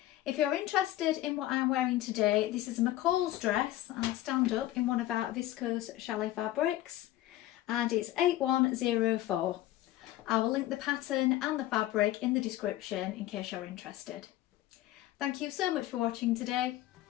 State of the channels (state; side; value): quieter; right; 14.9 dB